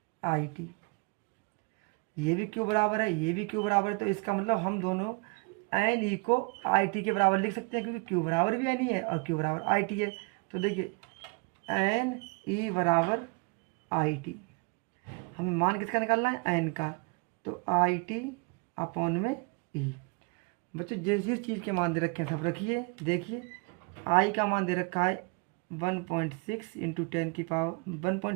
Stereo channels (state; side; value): quieter; left; 31.7 dB